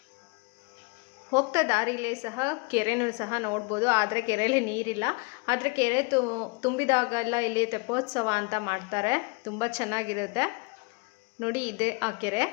ಹೋಗ್ತಾ ದಾರಿಲೇ ಸಹ ಕೆರೆನೂ ಸಹ ನೋಡ್ಬೋದು. ಆದರೆ ಕೆರೆಯಲ್ಲಿ ನೀರಿಲ್ಲ. ಆದರೆ ಕೆರೆ ತುಂಬಿದಾಗೆಲ್ಲ ಇಲ್ಲಿ ತೆಪ್ಪೋತ್ಸವ ಅಂತ ಮಾಡ್ತಾರೆ. ತುಂಬ ಚೆನ್ನಾಗಿರುತ್ತೆ ನೋಡಿ. ಇದೆ ಆ ಕೆರೆ,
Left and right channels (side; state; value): right; quieter; 30.1 dB